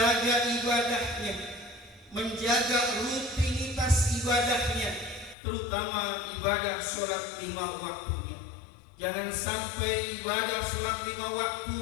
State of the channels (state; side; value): drops out; right; at 5.4 s